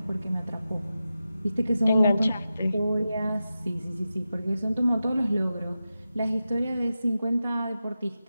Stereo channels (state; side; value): inverted; both; correlation -0.92